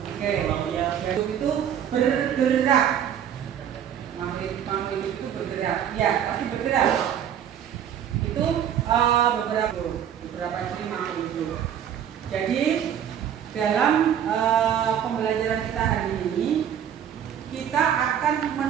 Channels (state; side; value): quieter; left; 9.3 dB